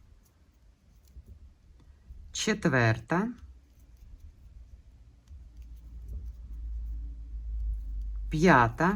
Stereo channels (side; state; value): both; identical; correlation 1.00